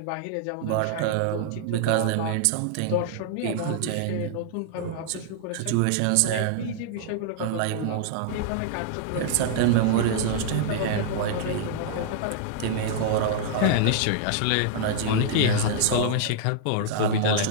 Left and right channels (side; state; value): both; different; correlation -0.01